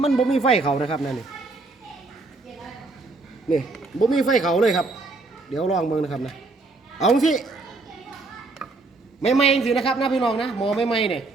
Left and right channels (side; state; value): left; quieter; 3.5 dB